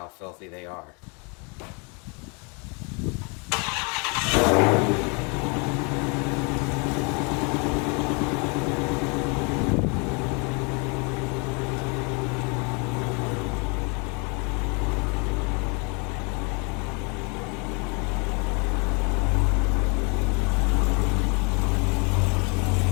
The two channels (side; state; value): right; quieter; 32.7 dB